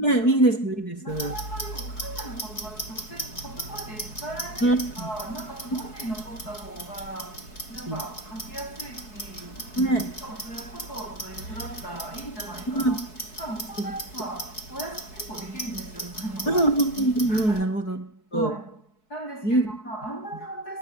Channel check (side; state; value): right; late; 4.7 ms